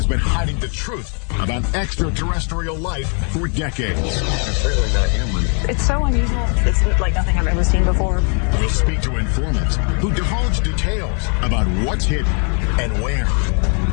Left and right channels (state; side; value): quieter; right; 39.8 dB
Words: been hiding the truth about extraterrestrial life for decades. It's really not human. It's so unusual. It's like nothing I've ever seen before. We'll speak to informants who divulge details about what's hidden and where.